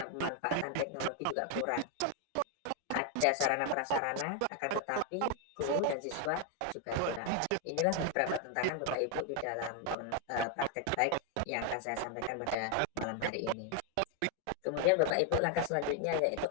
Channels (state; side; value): different; both; correlation 0.01